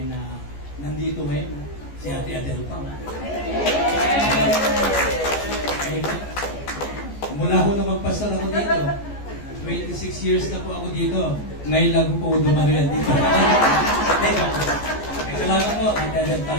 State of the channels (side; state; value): right; late; 14 ms